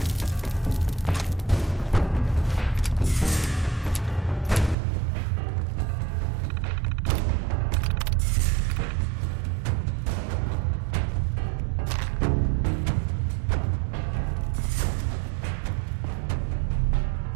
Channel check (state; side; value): drops out; left; at 4.8 s